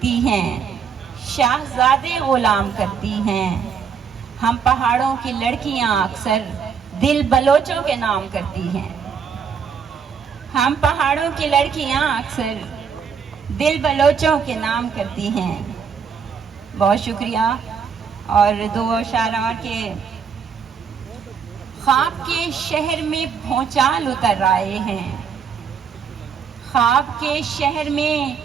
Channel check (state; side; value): quieter; left; 6.6 dB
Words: ہیں، شاہزادے غلام کرتی ہیں، ہم پہاڑوں کی لڑکیاں اکثر دل بلوچوں کے نام کرتی ہیں، ہم پہاڑوں کی لڑکیاں اکثر دل بلوچوں کے نام کرتی ہیں۔ بہت شکریہ۔ اور دو اشعار اور کے خواب کے شہر میں بھونچال اتر آئے ہیں، خواب کے شہر میں